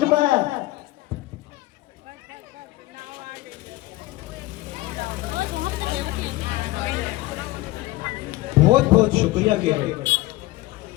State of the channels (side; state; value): right; quieter; 18.7 dB